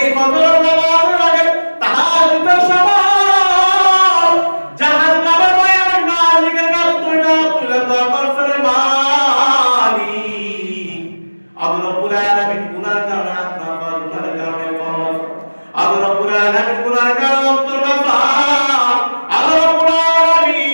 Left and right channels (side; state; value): both; inverted; correlation -1.00